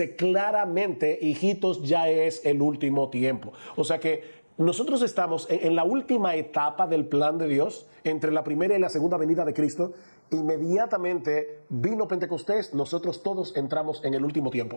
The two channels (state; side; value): inverted; both; correlation -1.00